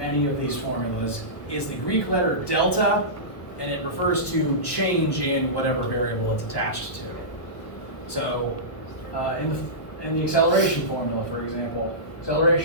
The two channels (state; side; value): late; right; 1.1 ms